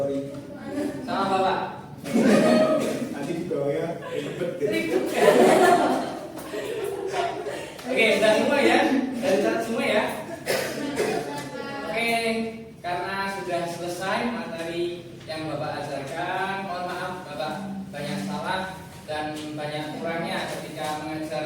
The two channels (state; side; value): identical; both; correlation 1.00